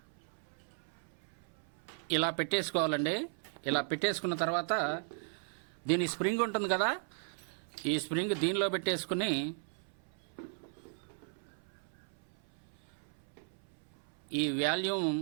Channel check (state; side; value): silent; left; 53 dB below the other